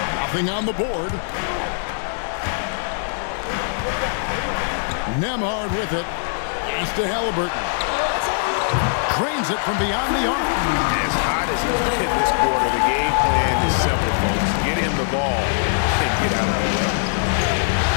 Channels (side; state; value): right; silent; digital silence